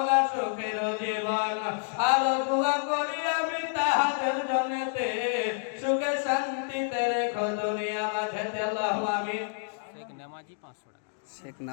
সুখের জীবন। আর দোয়া করি আমি তাহাদের জন্যতে সুখে শান্তিতে রেখো দুনিয়া মাঝেতে। আল্লাহু আমিন। শেখ নামাজি 500 টাকা।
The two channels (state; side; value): silent; right; digital silence